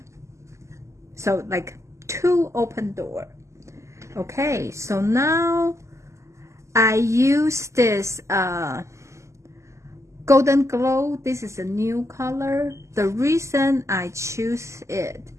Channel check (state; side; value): late; left; 0.14 ms